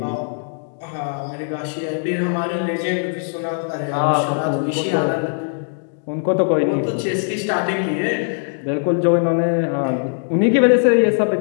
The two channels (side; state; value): right; silent; digital silence